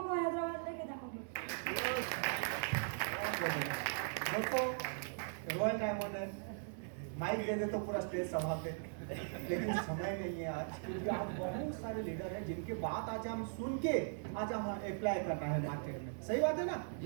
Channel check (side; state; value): left; silent; digital silence